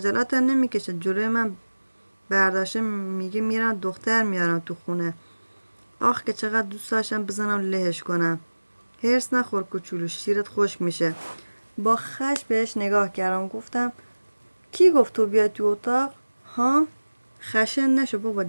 نمیکشه جلوی من برداشته میگه میرم دختر میارم تو خونه. آخ که چقدر دوست داشتم بزنم لهش کنم. هرس نخور کوچولو، شیرت خشک میشه. با خش بهش نگاه کردم. گفتم کی گفت تو بیای تو اتاق؟ ها؟ خشن نشو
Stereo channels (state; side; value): inverted; both; correlation -1.00